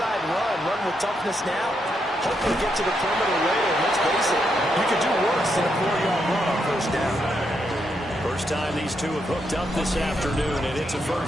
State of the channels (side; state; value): both; normal; correlation 0.80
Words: run with toughness now. Hopefully get to the perimeter later. Let's face it, you could do worse than a 4-yard run on first down. First time these two have hooked up this afternoon, and it's a